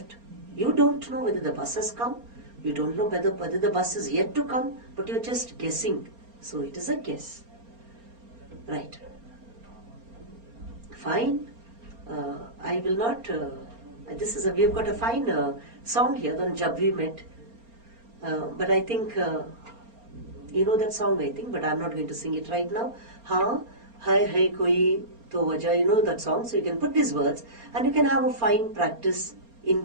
You don't know whether the bus has come. You don't know whether the bus is yet to come, but you're just guessing. So it is a guess. Right. Fine. I will not, we have got a fine song here on Jab We Met. But I think, you know that song I think, but I'm not going to sing it right now. Ha, hai koi to wajah, you know that song. So you can put these words and you can have a fine practice in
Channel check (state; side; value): late; left; 4.3 ms